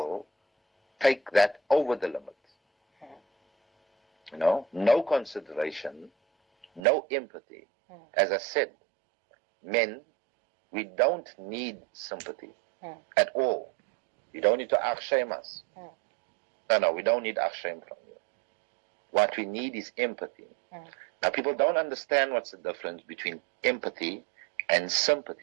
take that over the limit. You know, no consideration, no empathy. As I said, men, we don't need sympathy at all. You don't need to shame us. No, we don't need shame from you. What we need is empathy. Now, people don't understand what's the difference between empathy and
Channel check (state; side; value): drops out; left; at 6.8 s